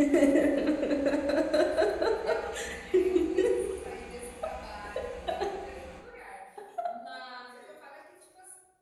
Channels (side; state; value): both; identical; correlation 1.00